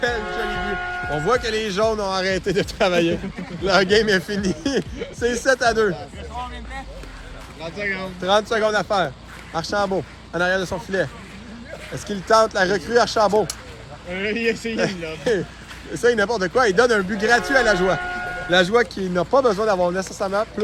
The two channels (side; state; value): both; identical; correlation 1.00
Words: joli but. On voit que les jaunes ont arrêté de travailler. Leur game est fini. C'est 7-2. 30 secondes. 30 secondes à faire. Archambault, en arrière de son filet. Est-ce qu'il tente la recrue Archambault? Il a essayé, là. Essaye n'importe quoi. Il donne un but gratuit à la joie. La joie qui n'a pas besoin d'avoir nécessairement